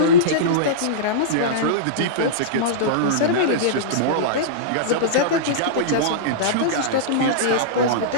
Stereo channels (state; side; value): different; both; correlation -0.04